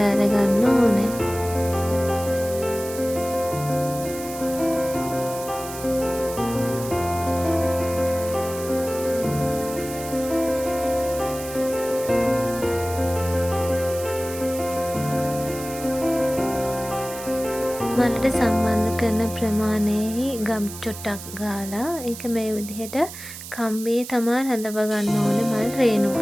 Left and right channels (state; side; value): noise; right; hiss, 12 dB below the sound